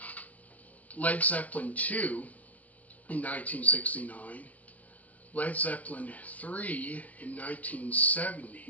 Led Zeppelin 2 in 1969, Led Zeppelin 3 in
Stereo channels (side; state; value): right; late; 0.076 ms